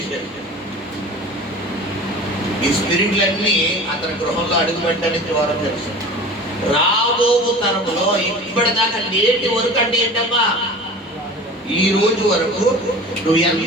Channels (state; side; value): normal; both; correlation 0.38